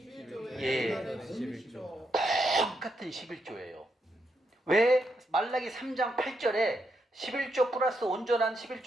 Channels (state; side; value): normal; both; correlation 0.81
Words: 예. 다른 11조. 똑같은 11조예요. 왜 말라기 3장 8절에 11조 플러스 온전한